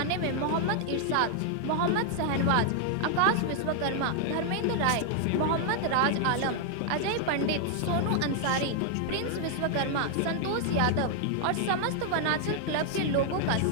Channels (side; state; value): both; different; correlation 0.00